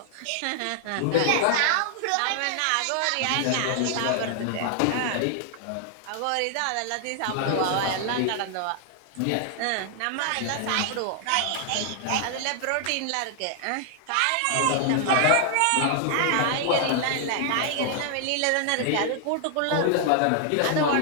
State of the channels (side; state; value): both; different; correlation 0.00